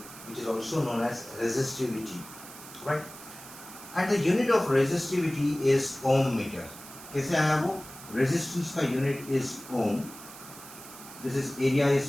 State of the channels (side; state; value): right; noise; hiss, 16 dB below the sound